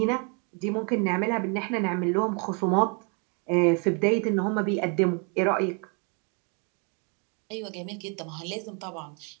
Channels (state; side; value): quieter; left; 36.5 dB